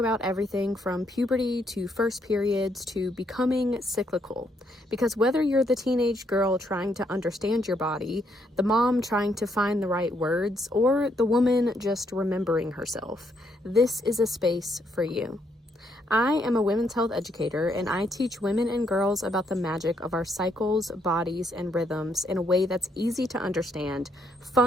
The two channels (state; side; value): normal; both; correlation 0.74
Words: everything from puberty to first periods to becoming cyclical. Because whether you're the teenage girl trying to understand your body, the mom trying to find the right words, or the woman just remembering herself, this is a space for you. I am a women's health educator, and I teach women and girls about the magic of our cycles, bodies, and rhythms in a way that's easy to understand,